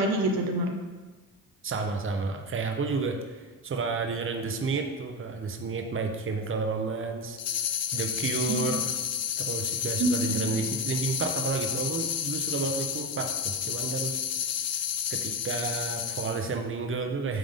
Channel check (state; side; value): normal; both; correlation 0.16